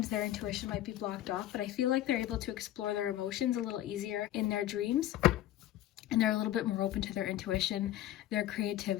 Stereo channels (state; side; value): quieter; right; 13.4 dB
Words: their intuition might be blocked off, but I feel like they're able to explore their emotions a little easier in their dreams, and they're a little bit more open to their intuition, their